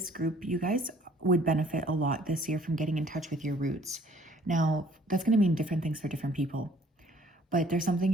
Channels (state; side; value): normal; both; correlation 0.58